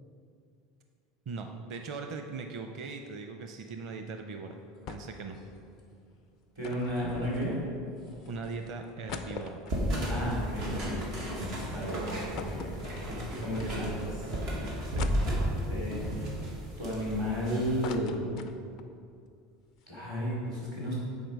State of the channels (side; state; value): both; normal; correlation 0.40